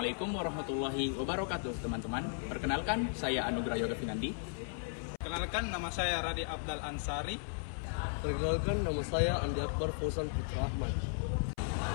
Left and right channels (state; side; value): silent; right; 54 dB below the other